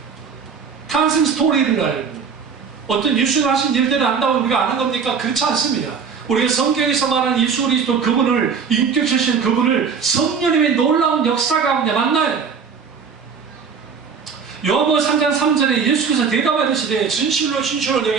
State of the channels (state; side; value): quieter; left; 6.1 dB